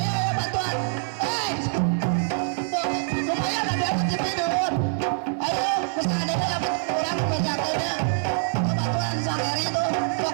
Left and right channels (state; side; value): silent; left; digital silence